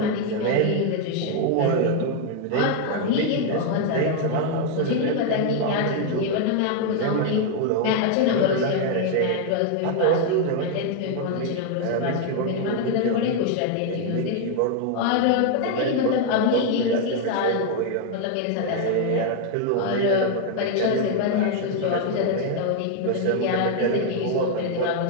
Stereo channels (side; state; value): both; different; correlation 0.00